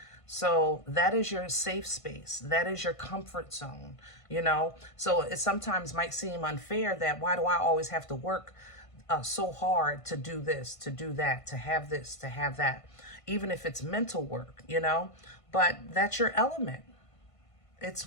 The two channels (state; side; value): late; right; 1.5 ms